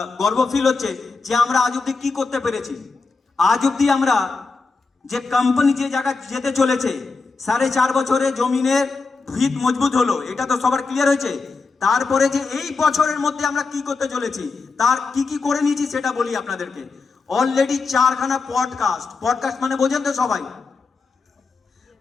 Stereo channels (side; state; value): right; quieter; 4.3 dB